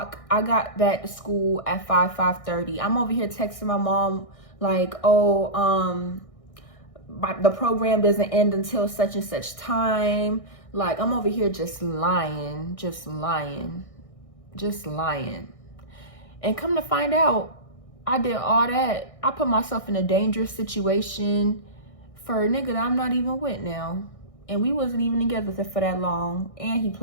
I got back to school at 5:30. I'm over here texting my mom like, oh, the program doesn't end until such and such time. Like, I'm over here just lying. And come to find out, I did all that. I put myself in a dangerous situation for a nigga that I'm not even with now. And we wasn't even together for that long. And he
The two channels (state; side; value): late; right; 1.6 ms